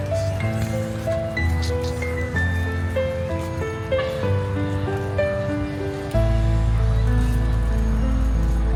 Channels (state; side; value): identical; both; correlation 1.00